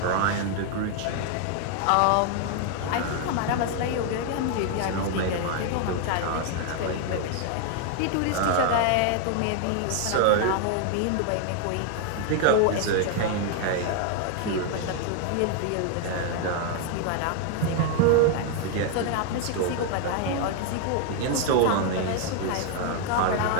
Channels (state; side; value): different; both; correlation 0.00